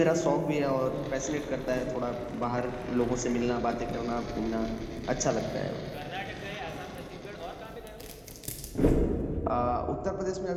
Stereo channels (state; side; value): identical; both; correlation 1.00